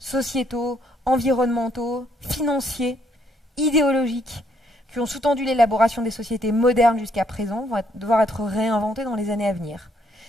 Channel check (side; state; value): both; normal; correlation 0.70